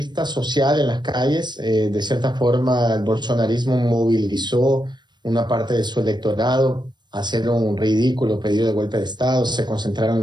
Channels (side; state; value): left; late; 0.21 ms